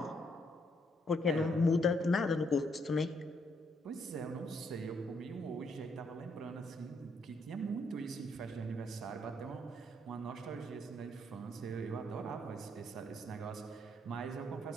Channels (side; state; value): both; normal; correlation 0.73